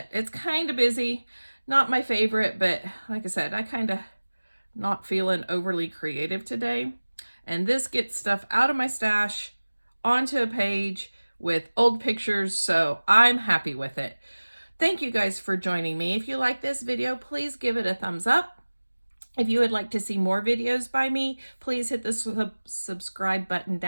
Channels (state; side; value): inverted; both; correlation -1.00